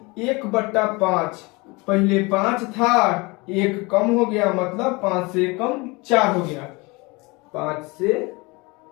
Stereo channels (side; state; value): right; quieter; 25.7 dB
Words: 1/5। पहले 5 था, 1 कम हो गया, मतलब 5 से कम 4 हो गया। 5 से